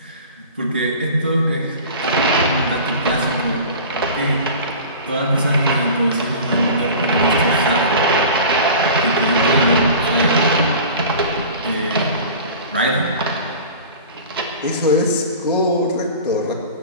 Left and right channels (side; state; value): both; inverted; correlation -0.38